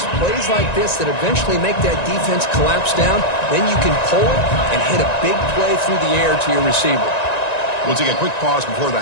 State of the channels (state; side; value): late; right; 1.9 ms